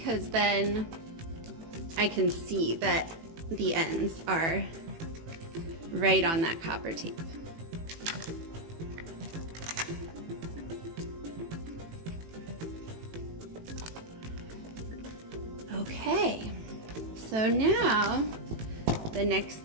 then I can see that the ends are right on that copper tape. Okay, so now the next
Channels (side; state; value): left; late; 18 ms